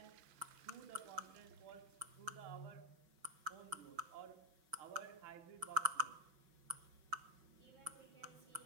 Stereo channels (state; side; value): late; left; 6.0 ms